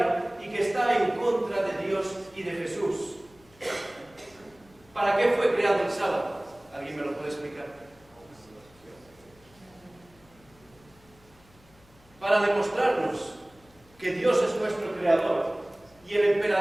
y que está en contra de Dios y de Jesús. ¿Para qué fue creado el sábado? ¿Alguien me lo puede explicar? Para demostrarnos que Dios es nuestro creador y el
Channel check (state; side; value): noise; left; hum, 28 dB below the sound